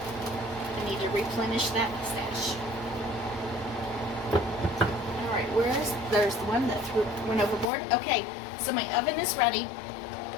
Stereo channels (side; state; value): right; drops out; at 7.7 s